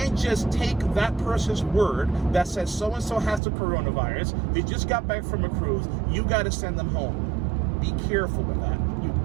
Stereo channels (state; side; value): drops out; left; at 3.4 s